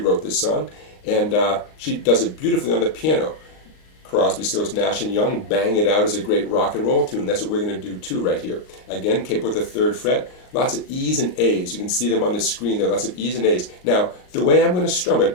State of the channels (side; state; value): right; late; 38 ms